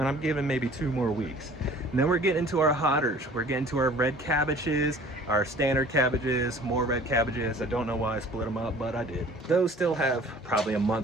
I'm giving maybe 2 more weeks. And then we're getting into our hotters. We're getting to our red cabbages, our standard cabbages, more red cabbages. I don't know why I split them up, but I did. Those still have probably a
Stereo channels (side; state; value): both; normal; correlation 0.49